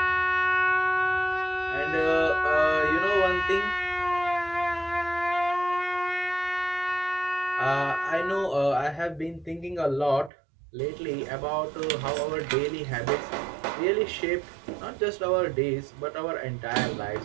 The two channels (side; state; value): left; drops out; at 10.3 s